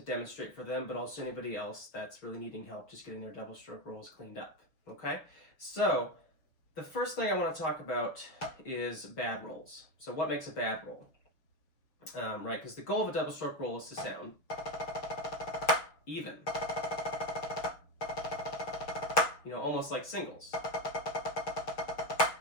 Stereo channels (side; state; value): right; late; 6.2 ms